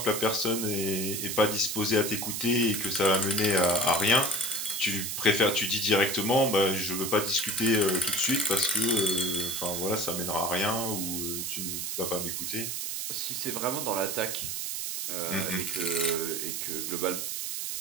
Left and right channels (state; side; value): noise; right; hiss, 3 dB below the sound